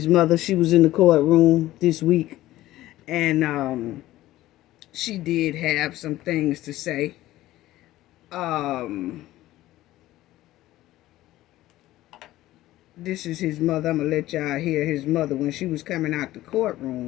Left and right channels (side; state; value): right; quieter; 15.7 dB